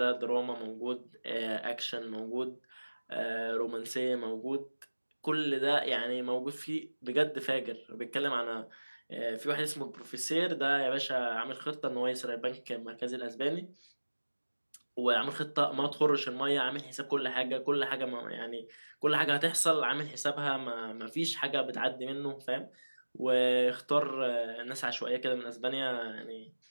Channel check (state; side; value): inverted; both; correlation -1.00